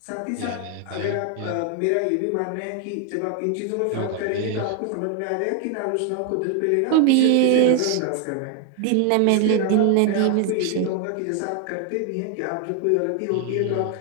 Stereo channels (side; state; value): both; different; correlation 0.01